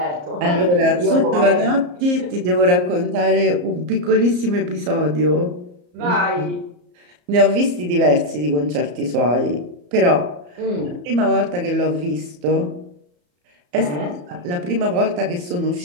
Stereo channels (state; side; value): late; left; 34 ms